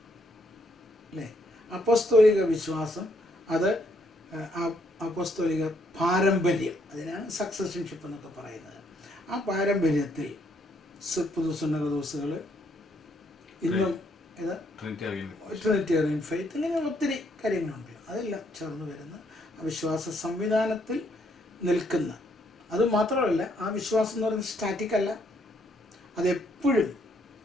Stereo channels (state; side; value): normal; both; correlation 0.71